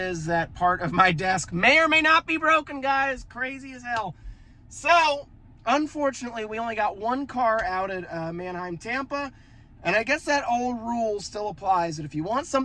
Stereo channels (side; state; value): both; identical; correlation 1.00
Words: that part of my desk may or may not be broken, guys. Crazy as hell. So, unfortunately, we only got one car out at Mannheim, Tampa. And I guess that old rule still applies, that if you want